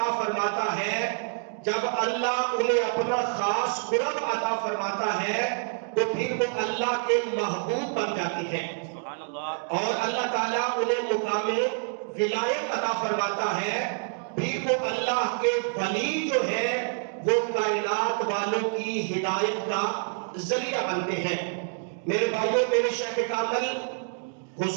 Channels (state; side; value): silent; left; 56 dB below the other